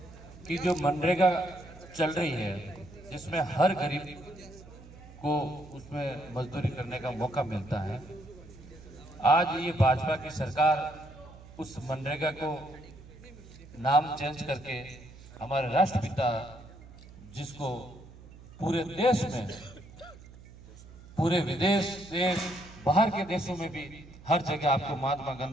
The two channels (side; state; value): right; noise; hum, 19 dB below the sound